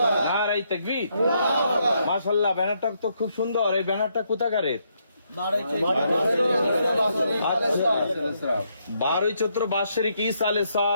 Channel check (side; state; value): both; inverted; correlation -0.76